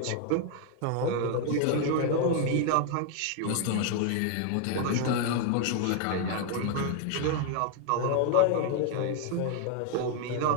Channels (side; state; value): both; different; correlation 0.00